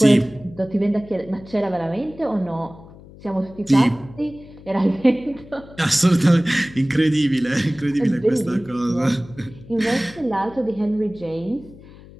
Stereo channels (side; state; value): left; noise; hum, 20 dB below the sound